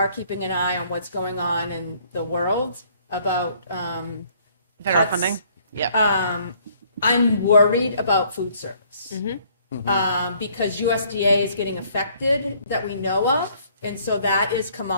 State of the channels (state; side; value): inverted; both; correlation -0.62